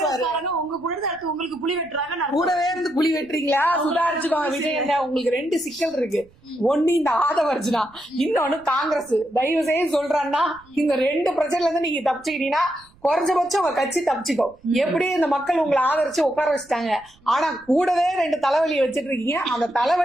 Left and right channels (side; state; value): right; noise; rumble, 29 dB below the sound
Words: உங்க கூட உங்களுக்கு புலி வெட்டுறாங்க, கூடவே இருந்து புலி வெட்டுறீங்களா? சுதாரிச்சுக்கோங்க விஜய் அண்ணா. உங்களுக்கு 2 சிக்கல் இருக்கு. ஒண்ணு இந்த ஆதவர்ஜுனா, இன்னொன்னு காங்கிரஸ். தயவு செய்து சொல்றான்னா, இந்த 2 பிரச்சனைல இருந்து நீங்க தப்பிச்சுக்கிட்டீங்கன்னா குறைஞ்சபட்சம் உங்க கட்சி தப்பிச்சுக்கோ. எப்படி இந்த மக்கள் உங்களை ஆதரிச்சு உட்கார வச்சுட்டாங்க, ஆனா கூடவே 2 தலைவலியை வச்சிட்டு இருக்கீங்க. அந்த